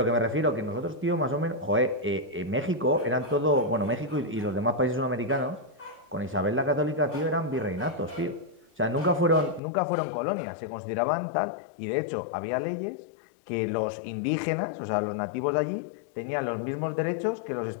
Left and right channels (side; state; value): right; drops out; at 9.6 s